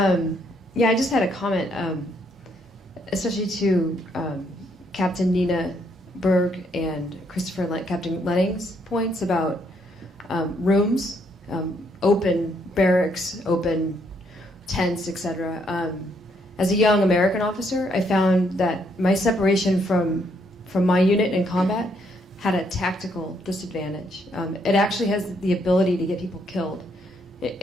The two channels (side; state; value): both; normal; correlation 0.72